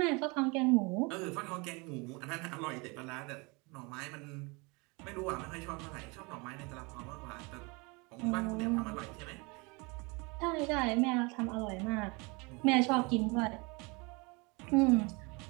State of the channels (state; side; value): quieter; left; 28.2 dB